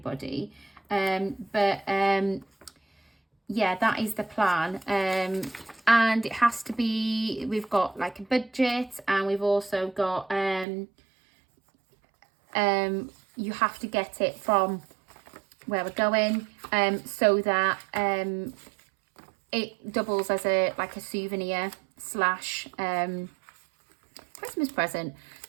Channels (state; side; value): drops out; left; at 10.7 s